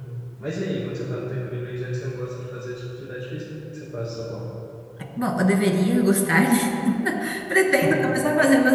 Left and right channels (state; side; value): identical; both; correlation 1.00